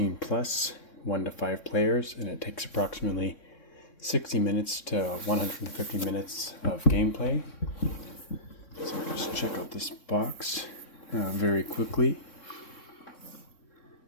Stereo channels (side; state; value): right; late; 3.6 ms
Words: plus, 1 to 5 players, and it takes approximately 60 minutes to 150 minutes of gameplay. So let's check out this box very quickly.